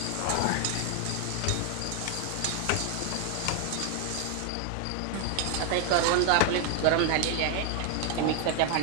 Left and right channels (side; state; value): both; different; correlation 0.00